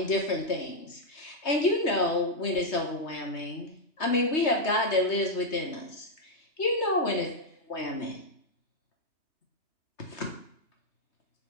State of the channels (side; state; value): right; late; 3.2 ms